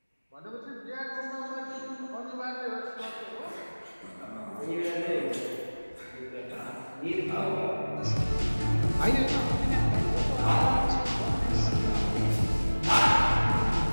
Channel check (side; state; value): both; inverted; correlation -1.00